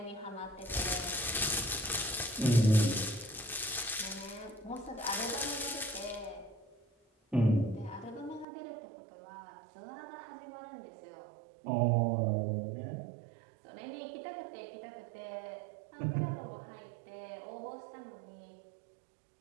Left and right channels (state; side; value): drops out; left; at 8.5 s